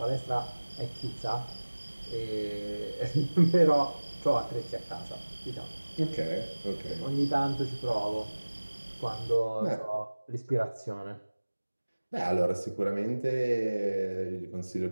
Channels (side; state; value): both; inverted; correlation -1.00